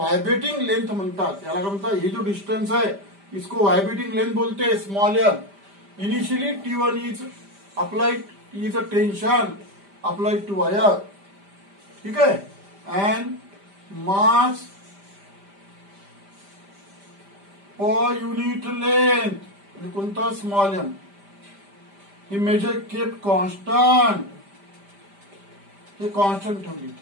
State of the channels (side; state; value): left; late; 5.0 ms